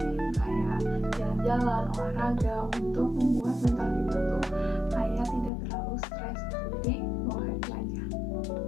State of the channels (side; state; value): right; drops out; at 5.5 s